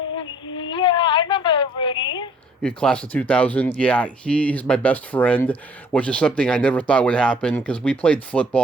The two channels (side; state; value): both; normal; correlation 0.58